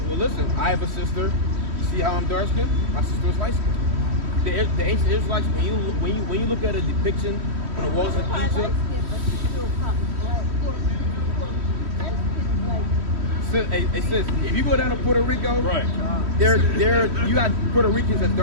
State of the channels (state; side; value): late; left; 3.1 ms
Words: listen. I have a sister. You see how I'm dark skinned? My sister is light skinned. The ancient Israelites, when you look at a depiction on the walls of Egypt. It says if you go down to Puerto Rico, right? You got Puerto Ricans as